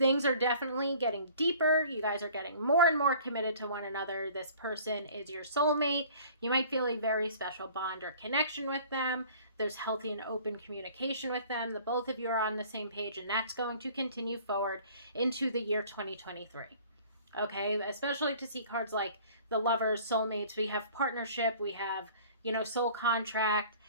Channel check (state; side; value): inverted; both; correlation -0.50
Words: are definitely getting deeper. You guys are getting more and more committed to one another. This person is your soulmate. You might feel a very special bond or connection with them. There's healthy and open communication with them. The both of you are on the same page, and that's going to continue forward into the year 2023. Okay, especially to see cards like the Lovers, Soulmates. We have partnership. We have, soul contract,